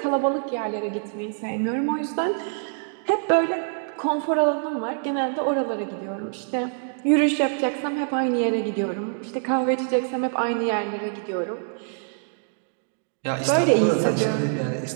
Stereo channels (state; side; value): silent; left; digital silence